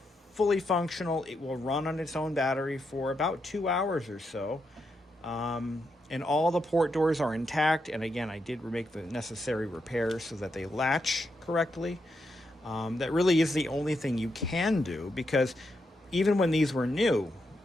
fully functional. It will run on its own battery for about 2 hours or so. And all the port doors are intact. And again, I did make the necessary repairs so that they latch correctly. That really is the only thing you can do, because even when these were new,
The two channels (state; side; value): normal; both; correlation 0.83